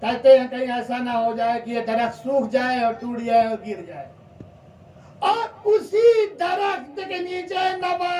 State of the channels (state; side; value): identical; both; correlation 1.00